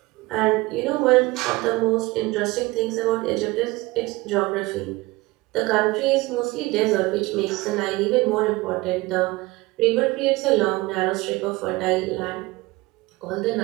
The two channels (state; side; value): quieter; left; 21.2 dB